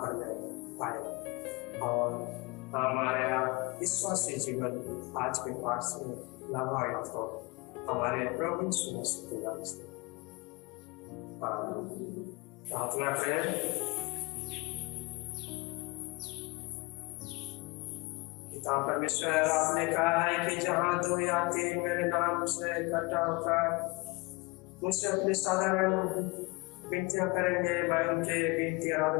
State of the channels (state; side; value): quieter; right; 26.2 dB